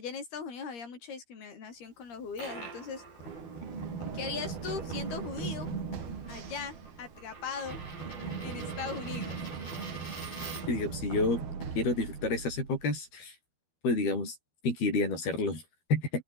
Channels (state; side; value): late; right; 13 ms